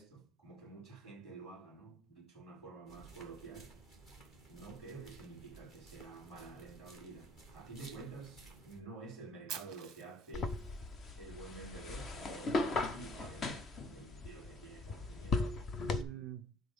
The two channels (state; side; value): normal; both; correlation 0.57